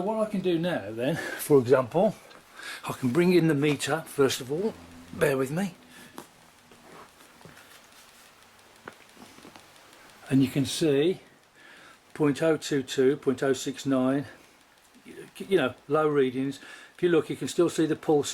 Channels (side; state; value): both; identical; correlation 1.00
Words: what I can do now then, for example, I can bring in the meter first of all. Bear with me. And you can see 0.022, 0.069, you know, low readings. If you look, you can still see the